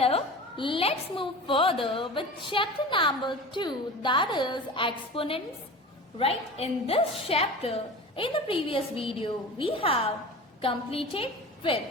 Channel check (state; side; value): normal; both; correlation 0.34